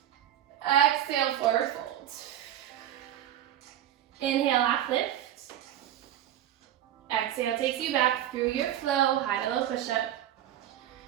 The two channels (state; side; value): quieter; left; 11.6 dB